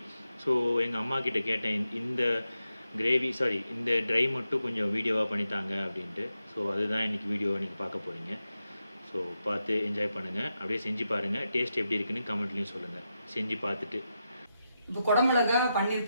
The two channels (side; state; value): both; inverted; correlation -0.87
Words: ஸோ எங்கள் அம்மா கிட்ட கேட்டேன் இந்த கிரேவி இந்த ட்ரை மட்டும் கொஞ்சம் வீடியோவாக பண்ணித்தாங்க அப்படின்ட்டு. ஸோ அதுதான் இன்றைக்கி வீடியோவை நீங்கள் பார்க்க போகிறீங்க. ஸோ பார்த்து என்ஜாய் பண்ணுங்கள். அப்படியே செஞ்சு பாருங்கள். டேஸ்ட் எப்படி இருக்குன்னு கமெண்ட்லேயும் சொல்லுங்கள் செஞ்சு பார்த்துட்டு. இப்போ குடமிளகா பன்னீர்